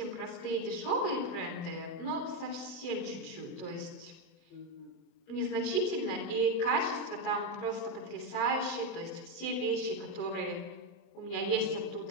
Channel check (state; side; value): late; right; 24 ms